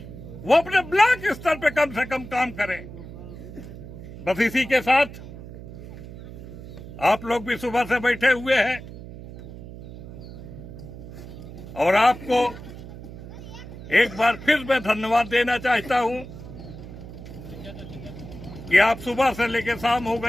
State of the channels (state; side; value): noise; right; hum, 13 dB below the sound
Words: वो अपने ब्लॉक स्तर पे कम से कम काम करें। बस इसी के साथ आप लोग भी सुबह से बैठे हुए हैं और आपको एक बार फिर मैं धन्यवाद देना चाहता हूं कि आप सुबह से लेकर शाम हो